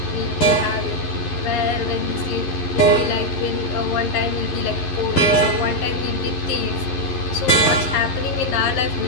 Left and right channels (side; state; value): right; late; 11 ms